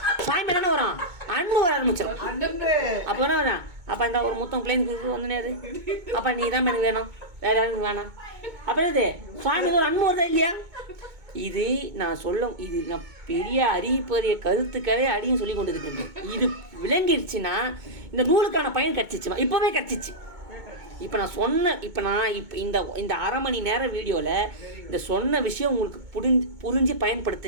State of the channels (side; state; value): left; late; 2.2 ms